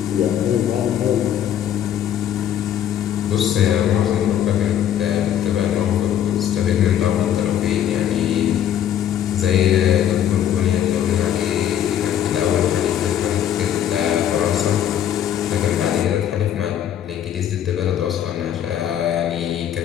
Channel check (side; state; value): right; quieter; 10.3 dB